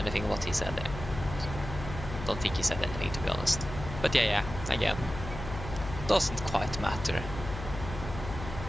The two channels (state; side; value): noise; left; hum, 9 dB below the sound